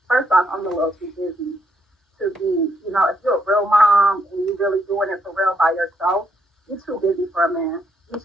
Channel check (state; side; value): normal; both; correlation 0.75